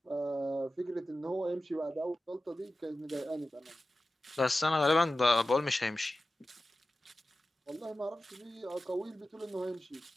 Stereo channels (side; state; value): both; normal; correlation 0.94